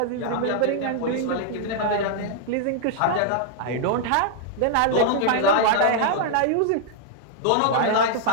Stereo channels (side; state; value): both; different; correlation -0.01